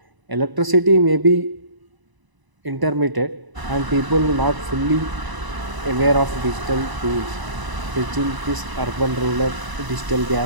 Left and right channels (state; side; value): late; left; 1.0 ms